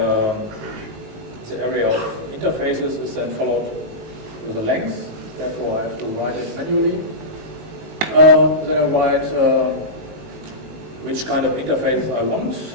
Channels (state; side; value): late; left; 19 ms